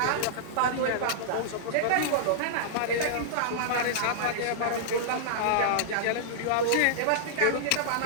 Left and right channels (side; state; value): both; different; correlation -0.02